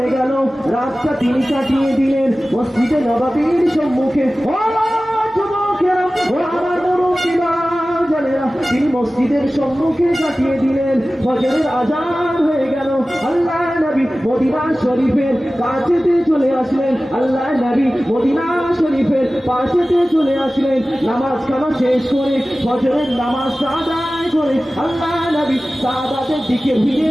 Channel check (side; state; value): both; normal; correlation 0.96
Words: গেল রাতটা তিনি কাটিয়ে দিলেন মসজিদে নববীর সম্মুখে তিনি মসজিদের সম্মুখে কাটিয়ে দিলেন ফজরের আজান হয়ে গেল আল্লাহ নবী মদিনা শরীফের কাছেতে চলে আসলেন আল্লাহ নবী মদিনা শরীফের পাশেতে চলে আসলেন নামাজ খানা শেষ করে ফজরের নামাজ আদায় করে আল্লাহ নবী সাহাবাদের দিকে ঘুরে